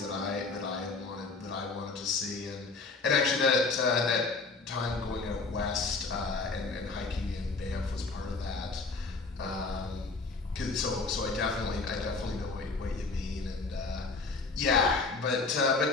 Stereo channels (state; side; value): quieter; right; 4.0 dB